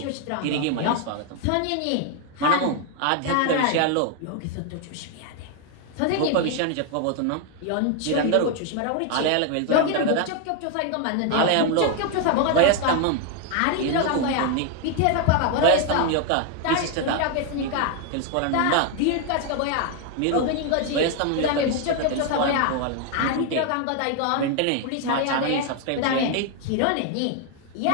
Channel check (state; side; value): different; both; correlation 0.01